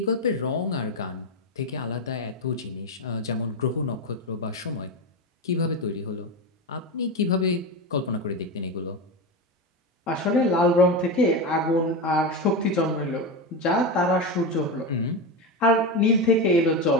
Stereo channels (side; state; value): both; normal; correlation 0.17